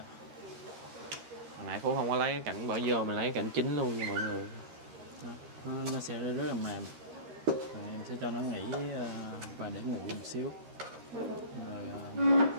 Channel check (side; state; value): left; late; 13 ms